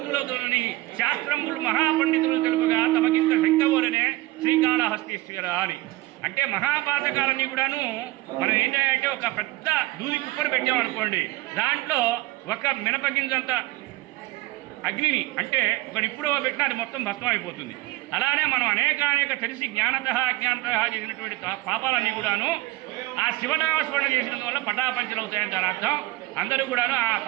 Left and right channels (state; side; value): quieter; left; 18.9 dB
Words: శాస్త్రములు మహాపండితులు తెలుపుగా తమకింత శంకవోలనే శ్రీకాళహస్తీశ్వర అని. అంటే మహాపాతకాలన్నీ కూడాను మనం ఏంటంటే ఒక పెద్ద దూది కుప్పను పెట్టామనుకోండి, దాంట్లో ఒక మినపగింజంత అగ్నిని అంటే ఒక నిప్పుడో పెట్టినా అది మొత్తం భస్మం అయిపోతుంది. అలానే మనం అనేక తెలిసి జ్ఞానతః అజ్ఞానతః చేసినటువంటి పాపాలన్నీ కూడాను ఆ శివనామస్మరణ చేసినందువల్ల పటాపంచలవుతాయని దాని అర్థం. అందరూ కూడాను ఆ